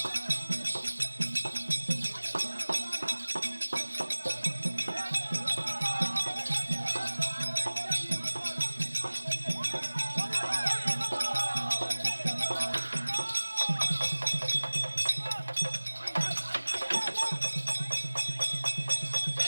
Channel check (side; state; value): both; inverted; correlation -1.00